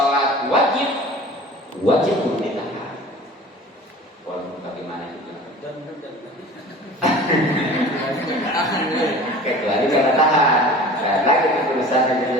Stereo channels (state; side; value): normal; both; correlation 0.41